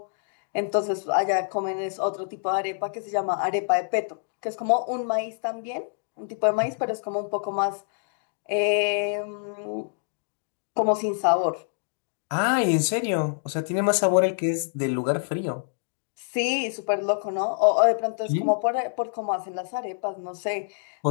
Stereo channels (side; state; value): right; silent; digital silence